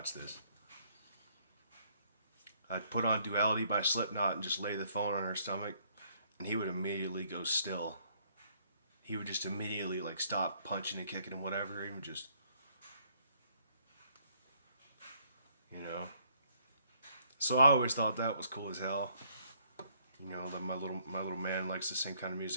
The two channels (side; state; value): both; inverted; correlation -0.66